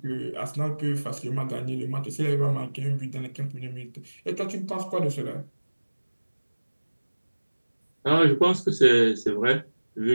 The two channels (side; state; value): both; inverted; correlation -1.00